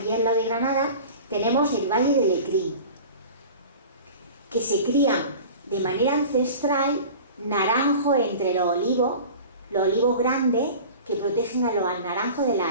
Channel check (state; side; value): inverted; both; correlation -0.38